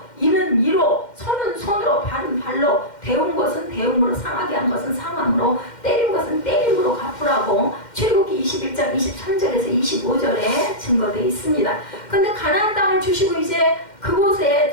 이는 이로, 손은 손으로, 발은 발로, 배운 것은 배움으로, 상하게 한 것은 상함으로, 때린 것은 때림으로 갚으라고 출애굽기 21장 23절에서 25절에 증거되어 있습니다. 근데 가나안 땅을 주시고 이제 그곳에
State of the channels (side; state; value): right; late; 2.1 ms